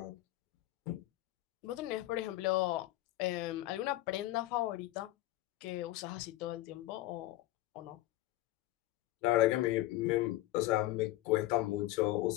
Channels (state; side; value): quieter; right; 16.5 dB